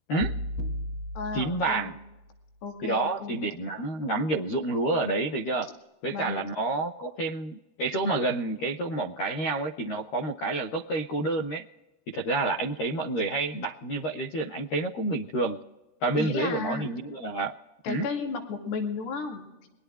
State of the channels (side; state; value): right; late; 13 ms